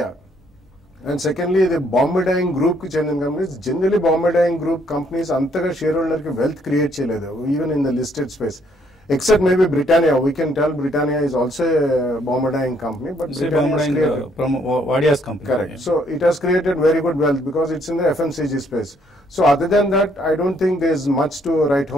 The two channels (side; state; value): both; normal; correlation 0.68